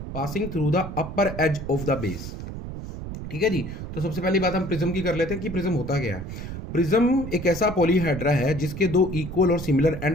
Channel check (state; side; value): noise; right; rumble, 8 dB below the sound